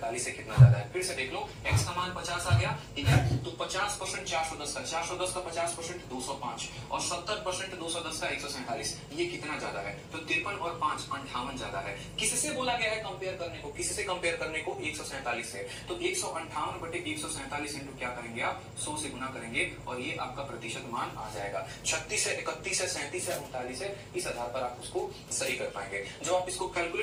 से कितना ज्यादा है। फिर से देख लो, x का मान 50 आ गया, ठीक है। तो 50% 410 का 50% 205 और 70% 210 का 147, ये कितना ज्यादा है, तो 53 और 5 58 ज्यादा है। किससे बोला गया है कंपेयर करने को, किससे कंपेयर करने को, 147 से। तो 158 बटे 147 इंटू क्या करेंगे आप, 100 से गुना करेंगे और ये आपका प्रतिशत मान आ जाएगा। 36 से 31 से 37 से 39 है, इस आधार पर आप उसको सही कर पाएंगे। जब आप इसको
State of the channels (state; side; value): identical; both; correlation 1.00